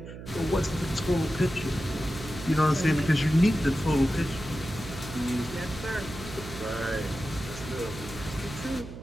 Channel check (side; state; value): right; noise; hum, 12 dB below the sound